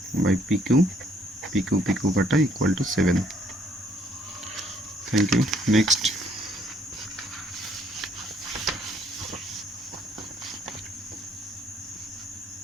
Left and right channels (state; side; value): normal; both; correlation 0.65